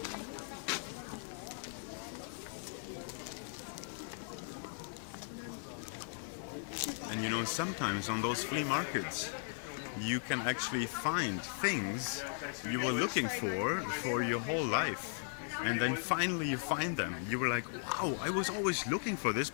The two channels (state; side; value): silent; right; digital silence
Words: And you know, sometimes on those flea markets, you can actually find things you were looking for your whole life. And then finally you find them. You were like, wow, I was always looking for this,